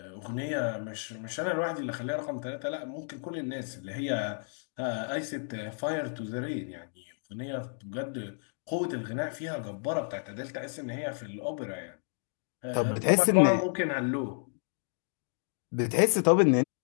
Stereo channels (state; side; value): silent; right; 57 dB below the other